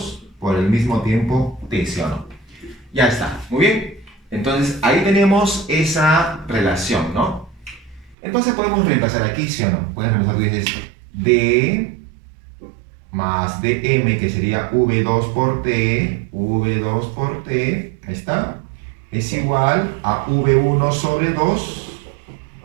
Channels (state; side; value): drops out; left; at 8.2 s